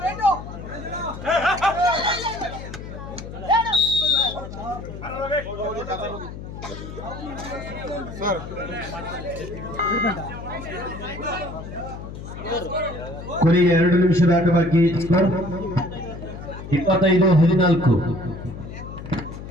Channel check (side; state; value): left; noise; hum, 11 dB below the sound